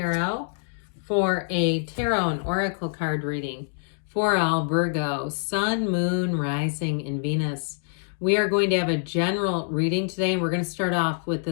for a tarot and oracle card reading for all Virgo, Sun, Moon, Rising, and Venus. We are going to have a general reading today, and we're going to start off with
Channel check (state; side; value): silent; right; digital silence